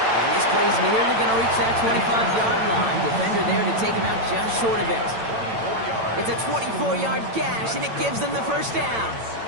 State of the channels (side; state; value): left; late; 8.9 ms